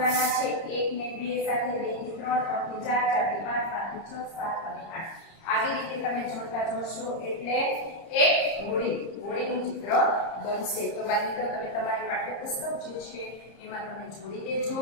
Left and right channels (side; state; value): right; late; 30 ms